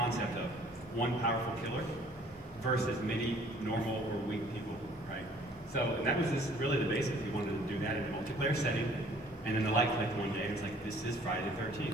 of one powerful killer versus many normal or weak people, right? So that was really the basics. We wanted to do that in a multiplayer setting, and then the light clicked one day, and it's like, this is Friday the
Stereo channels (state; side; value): normal; both; correlation 0.56